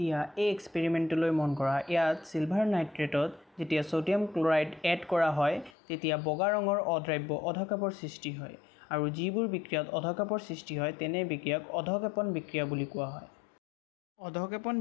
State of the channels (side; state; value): right; drops out; at 5.8 s